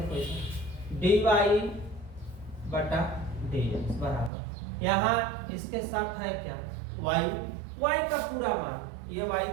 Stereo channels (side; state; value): left; drops out; at 4.3 s